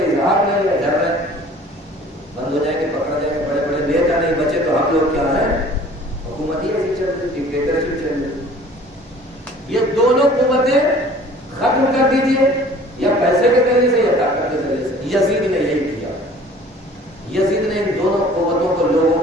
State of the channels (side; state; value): both; normal; correlation 0.49